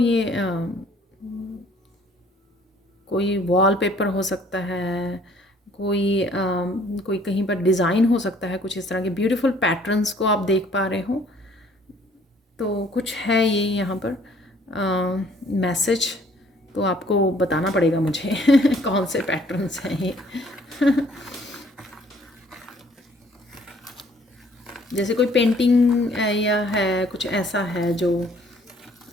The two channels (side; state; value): both; normal; correlation 0.59